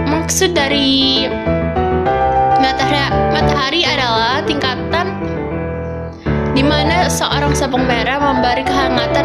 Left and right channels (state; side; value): identical; both; correlation 1.00